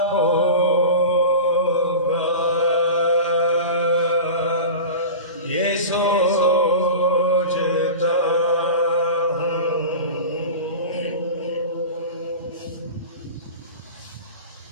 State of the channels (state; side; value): inverted; both; correlation -0.31